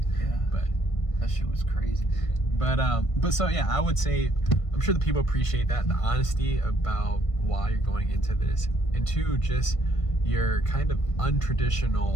But that shit was crazy. But so yeah, I would say, I'm sure the people appreciate that, the honesty about why you're going into this, and two, just your kind of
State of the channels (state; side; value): late; right; 1.5 ms